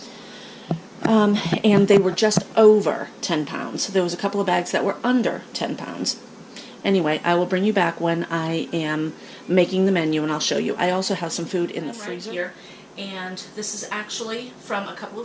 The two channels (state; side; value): identical; both; correlation 1.00